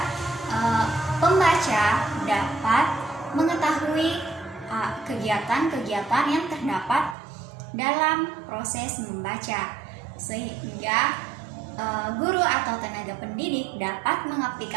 pembaca dapat mengetahui kegiatan-kegiatan yang terdapat dalam proses membaca, sehingga guru atau tenaga pendidik dapat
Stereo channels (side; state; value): left; drops out; at 7.2 s